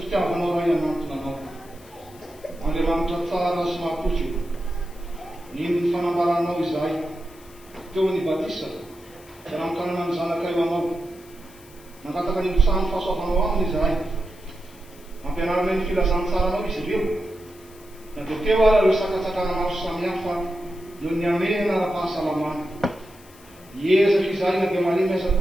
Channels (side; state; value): left; noise; hiss, 24 dB below the sound